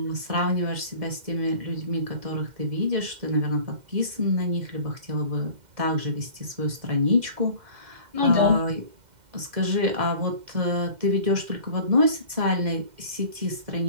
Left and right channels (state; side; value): late; left; 2.1 ms